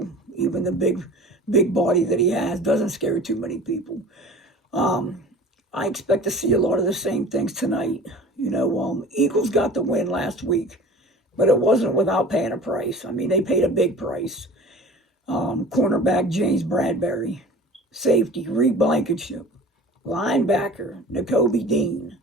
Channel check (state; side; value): normal; both; correlation 0.41